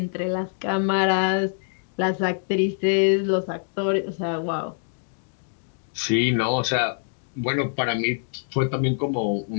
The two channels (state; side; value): silent; right; digital silence